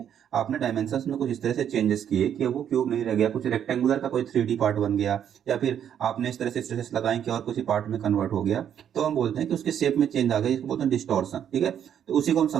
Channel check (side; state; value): left; quieter; 9.3 dB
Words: आपने डायमेंशंस में कुछ इस तरह से चेंजेस किए कि अब वो क्यूब नहीं रह गया, कुछ रेक्टेंगुलर का कोई 3D पार्ट बन गया, या फिर आपने इस तरह से स्ट्रेसेस लगाए कि और कुछ पार्ट में कन्वर्ट हो गया, तो हम बोलते हैं कि उसके शेप में चेंज आ गया, इसको बोलते हैं डिस्टॉर्शन। ठीक है, तो उसी को हम